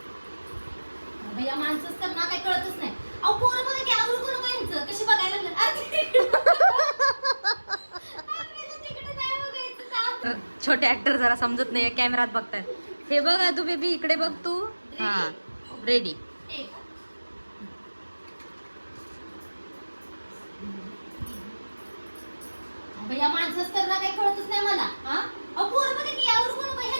भैया माणसंच तर ना काही कळतच नाही अहो पोरं बघा की आवडू करू यांचं कशी बघायला लागलं तिकडे नाही बघायचं का छोटे ऍक्टर जरा समजत नाही कॅमेरात बघतायत हे बघ तू बेबी इकडे बघ तू हा रेडी एक भैया माणसंच तर ना काही कळतच नाही मला हा अहो पोरं बघा की आवडू करू का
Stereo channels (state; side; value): inverted; both; correlation -1.00